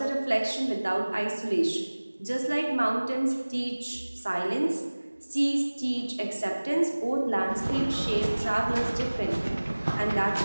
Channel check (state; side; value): inverted; both; correlation -1.00